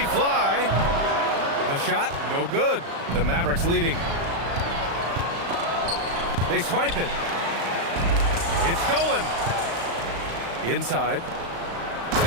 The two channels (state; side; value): late; left; 35 ms